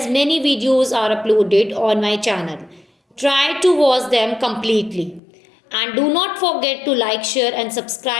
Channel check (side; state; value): right; drops out; at 5.2 s